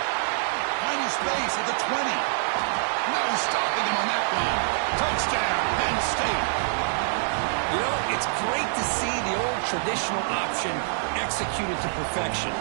Finding space at the 20. No stopping him on that one. Touchdown, Penn State. You know, it's great to see the old traditional option executed to perfection.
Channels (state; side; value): silent; left; digital silence